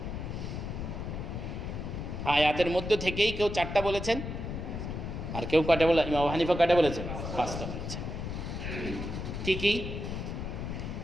আয়াতের মধ্য থেকেই কেউ 4টা বলেছেন, আর কেউ কয়টা বলে, ইমাম আবু হানিফা কয়টা বলেছেন, 5টা বলেছেন। ঠিকই,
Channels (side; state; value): left; noise; rumble, 5 dB below the sound